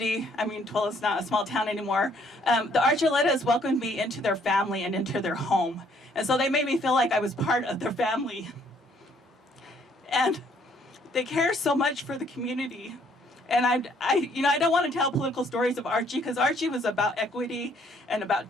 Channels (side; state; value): both; normal; correlation 0.65